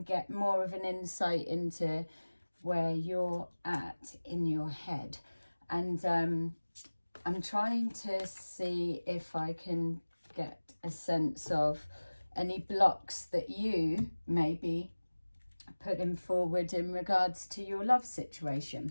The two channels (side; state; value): both; inverted; correlation -1.00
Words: get more of an insight into where you're at in your head. And I'm trying to see if I can get a sense of any blocks that you may be putting forward in regards to your love